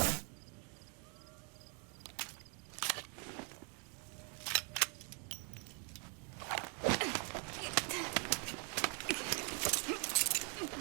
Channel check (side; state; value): left; quieter; 38.0 dB